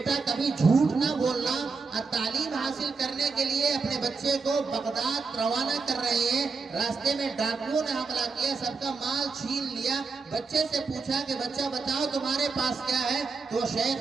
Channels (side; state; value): left; quieter; 4.6 dB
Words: کبھی جھوٹ نہ بولنا، اور تعلیم حاصل کرنے کے لیے اپنے بچے کو بغداد روانہ کر رہے ہیں، راستے میں ڈاکوؤں نے حملہ کیا، سب کا مال چھین لیا، بچے سے پوچھا کہ بچہ بتاؤ تمہارے پاس کیا ہے؟ تو